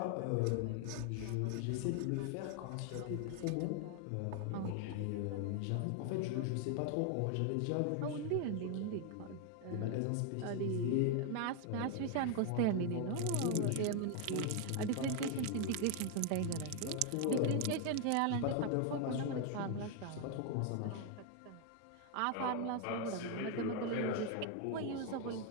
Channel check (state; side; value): different; both; correlation 0.01